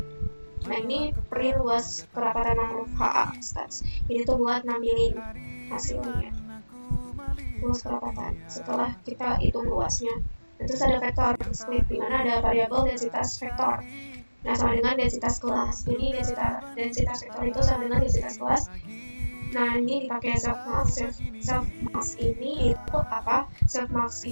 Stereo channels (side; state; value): both; inverted; correlation -1.00